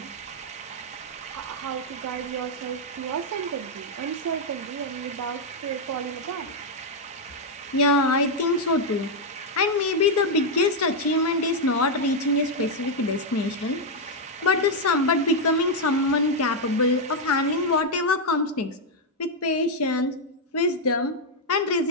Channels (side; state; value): both; normal; correlation 0.00